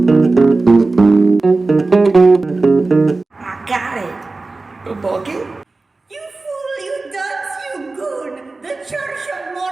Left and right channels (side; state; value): left; quieter; 3.5 dB